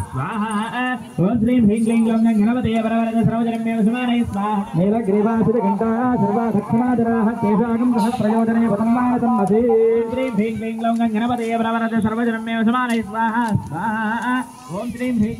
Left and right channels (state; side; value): identical; both; correlation 1.00